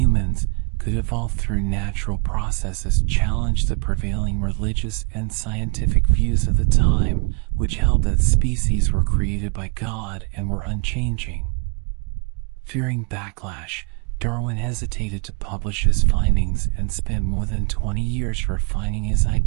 could evolve through natural processes challenged the prevailing religious and scientific views of the time, which held that species were created by God and were unchanging. Fearing backlash, Darwin hesitated to publish his findings and spent more than 20 years refining his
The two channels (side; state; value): left; quieter; 33.5 dB